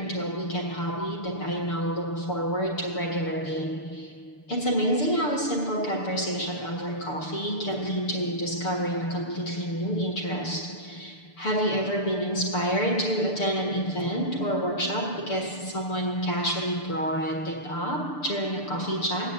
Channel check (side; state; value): right; late; 6.8 ms